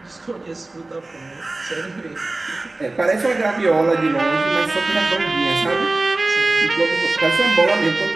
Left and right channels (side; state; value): left; quieter; 3.0 dB